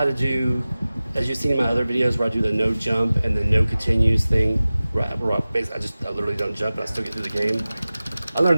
to do, as you've seen in my other videos where I do the no jump and the no continues thing, where I literally don't jump and I still get through the game. I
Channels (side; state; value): both; inverted; correlation -0.97